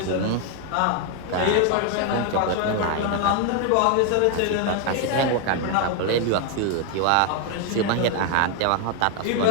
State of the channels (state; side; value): different; both; correlation 0.01